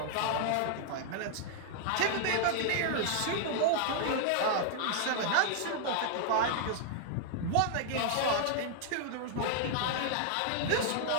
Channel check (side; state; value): both; different; correlation 0.00